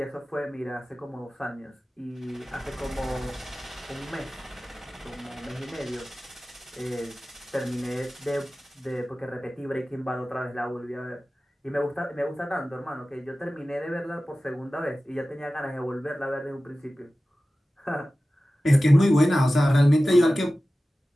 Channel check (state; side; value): normal; both; correlation 0.96